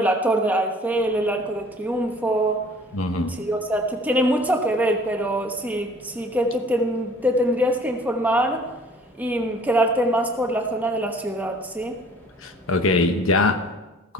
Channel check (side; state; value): both; normal; correlation 0.52